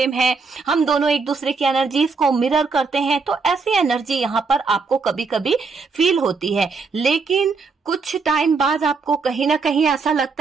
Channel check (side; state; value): left; quieter; 4.6 dB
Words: है, हम दोनों एक दूसरे की एनर्जीज को मिरर करते हैं। तो ऐसी एनर्जी यहाँ पर आपको कभी कभी फील होती है। लेकिन कुछ टाइम बाद आपको कहीं ना कहीं ऐसा